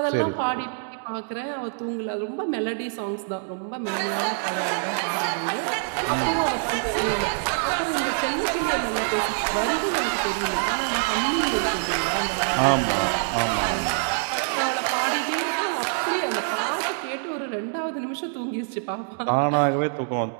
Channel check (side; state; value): left; silent; digital silence